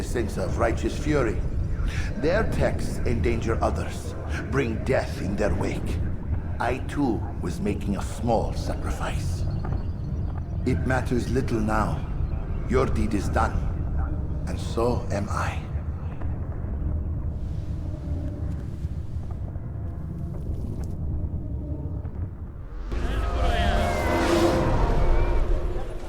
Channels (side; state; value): both; identical; correlation 1.00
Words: sense of righteous fury? Their texts endanger others, bring death in their wake. I too was making a small sacrifice. It matters little now. Your deed is done, and so am I.